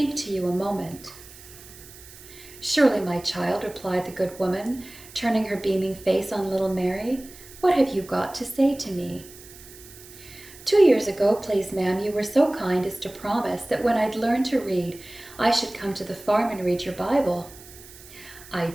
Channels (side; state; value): right; noise; hiss, 19 dB below the sound